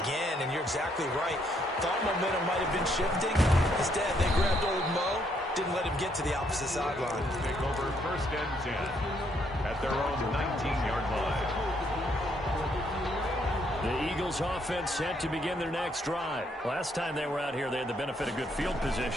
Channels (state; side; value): normal; both; correlation 0.72